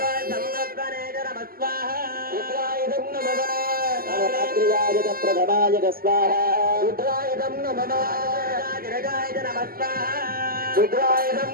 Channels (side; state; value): left; late; 0.42 ms